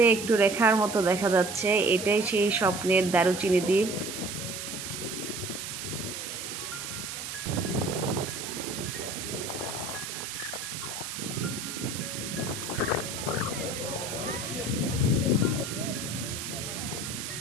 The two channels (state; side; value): noise; right; hiss, 6 dB below the sound